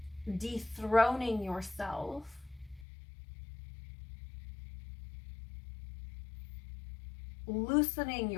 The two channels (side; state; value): right; drops out; at 2.9 s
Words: dethroning yourself, loosening